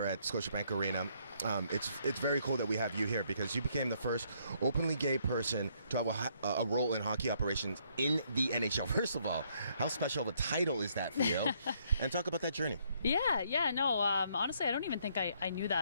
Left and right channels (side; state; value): both; inverted; correlation -0.69